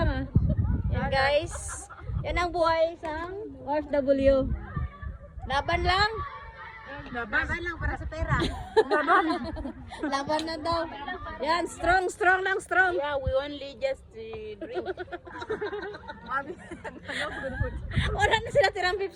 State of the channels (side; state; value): both; identical; correlation 1.00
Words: ah. Yan guys. Yan ang buhay isang OFW. Laban lang. Laban lang para sa pera. Laban na daw. Yan, strong lang, strong. Yeah, we only just drink. Wala na sila tirang